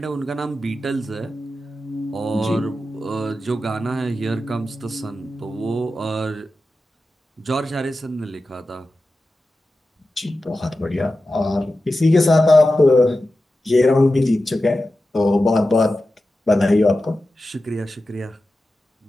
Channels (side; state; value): both; normal; correlation 0.93